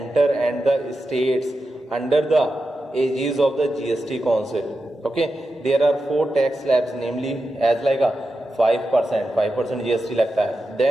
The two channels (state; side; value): normal; both; correlation 0.90